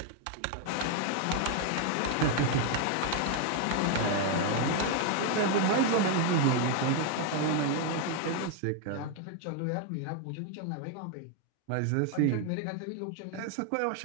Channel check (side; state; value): both; different; correlation 0.01